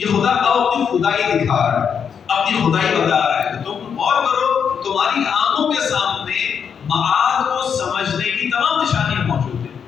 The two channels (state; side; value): quieter; right; 7.2 dB